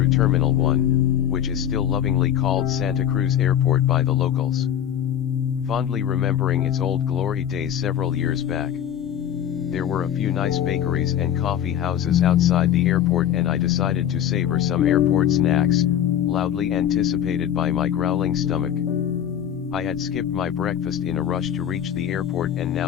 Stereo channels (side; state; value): right; quieter; 10.1 dB